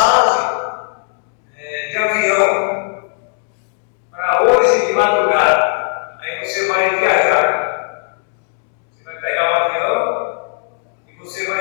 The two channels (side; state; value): right; silent; 60 dB below the other